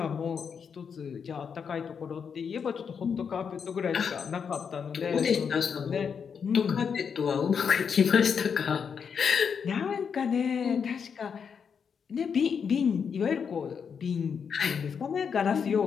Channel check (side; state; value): right; quieter; 6.6 dB